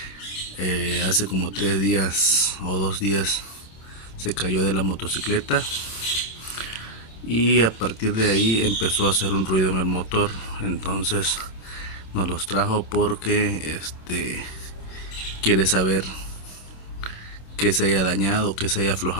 hace como 3 días o 2 días se cayó de la motocicleta y a partir de ahí empezó a hacer un ruido en el motor. Entonces nos los trajo porque quiere saber que se haya dañado, que se haya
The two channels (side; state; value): right; late; 26 ms